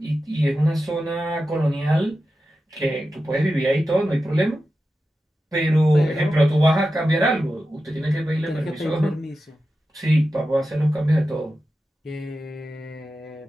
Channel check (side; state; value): both; normal; correlation 0.92